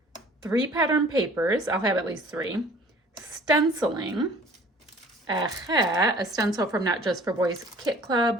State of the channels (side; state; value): both; normal; correlation 0.51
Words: 3 pattern papers, I'll have at least 3, stenciling, a stencil from Not Just for Boys Kit